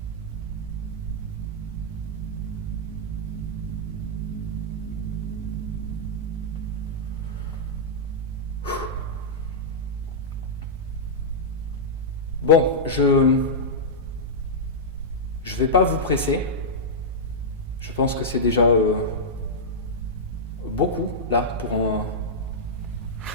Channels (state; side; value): normal; both; correlation -0.11